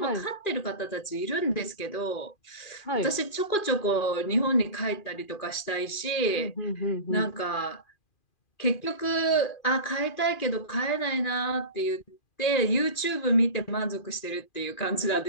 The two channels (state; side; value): late; right; 2.4 ms